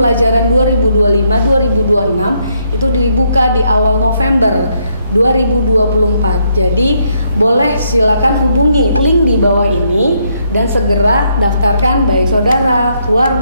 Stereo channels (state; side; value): inverted; both; correlation -0.74